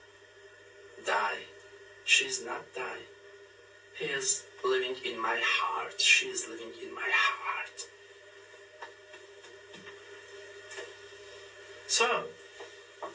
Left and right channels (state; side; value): identical; both; correlation 1.00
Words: die, she is not die. He is living in my heart, she is living in my heart. So,